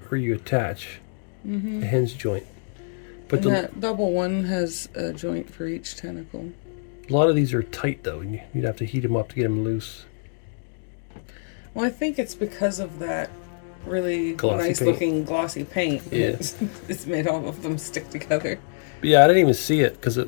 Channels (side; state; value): right; silent; digital silence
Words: where you attach a hinge joint. But And that double one has a joint for each tentacle. a lot of these are tight though, and you'd have to heat them up to get them loose. Well, I think it's because of that really Glossy nice paint. looking glossy paint. Yeah. It's made all of them stick together. But yeah, I didn't even see it because